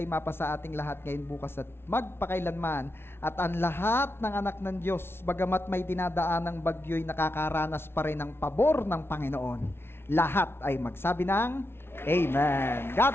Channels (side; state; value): right; late; 0.12 ms